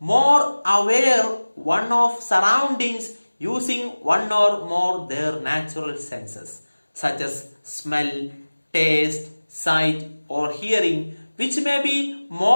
aware one of surroundings using one or more their natural senses, such as smell, taste, sight, or hearing, which may be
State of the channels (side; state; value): both; inverted; correlation -1.00